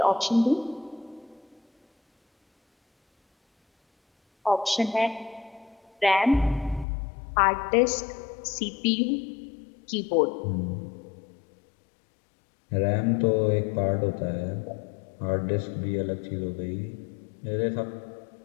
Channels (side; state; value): right; drops out; at 6.9 s